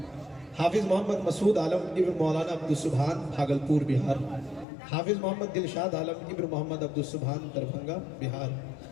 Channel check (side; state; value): right; drops out; at 4.7 s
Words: حافظ محمد مسعود عالم ابن مولانا عبدالسبحان بھاگلپور بہار. حافظ محمد دلشاد عالم ابن محمد عبدالسبحان دربھنگا بہار.